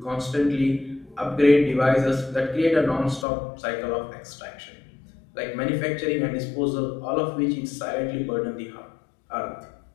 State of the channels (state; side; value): drops out; right; at 3.2 s